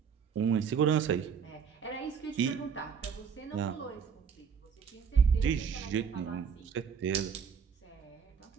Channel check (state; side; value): quieter; left; 6.7 dB